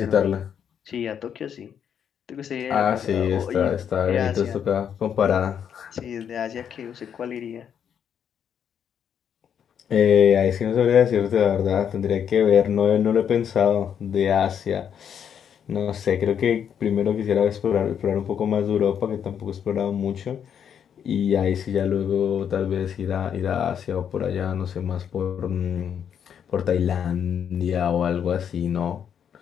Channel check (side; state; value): right; quieter; 8.3 dB